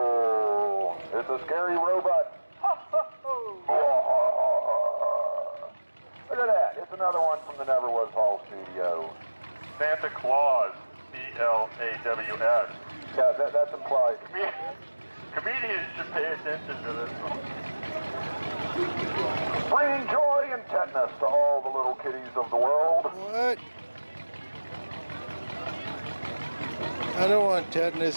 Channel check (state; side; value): inverted; both; correlation -1.00